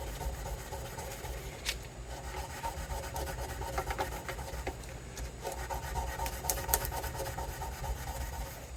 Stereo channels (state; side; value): identical; both; correlation 1.00